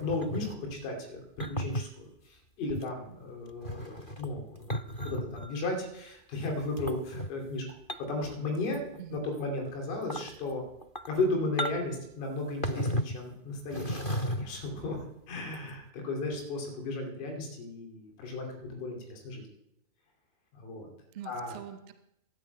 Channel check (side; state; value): right; late; 2.4 ms